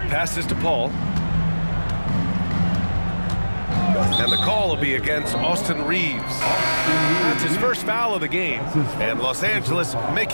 to Paul. And the call will be against Austin Reeves. That's his first foul of the game. And Los Angeles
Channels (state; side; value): inverted; both; correlation -1.00